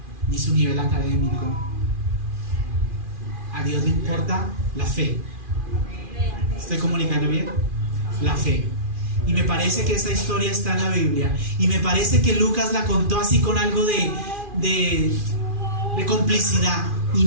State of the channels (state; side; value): late; left; 2.4 ms